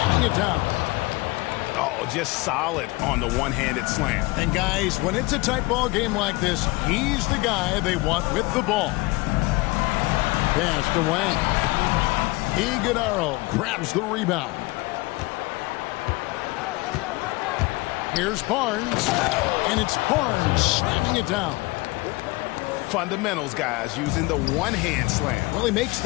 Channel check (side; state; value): right; quieter; 22.9 dB